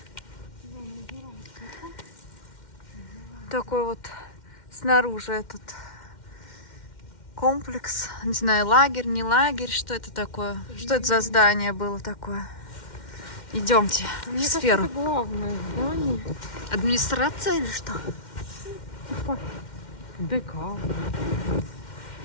Такой вот снаружи этот комплекс. Не знаю, лагерь, не лагерь. Что это такое? Что это за здание было такое? Идемте в Мне кажется, сферу. это главное здание. Администрация или что? Типа ДК.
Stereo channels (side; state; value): right; late; 2.1 ms